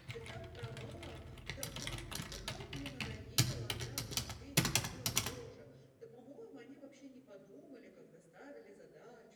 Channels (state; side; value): identical; both; correlation 1.00